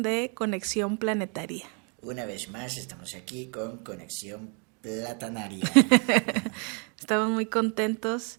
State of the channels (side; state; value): left; quieter; 36.4 dB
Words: de Conexión Planetaria. Una vez más estamos aquí con Conexión Platanaria. Estamos muy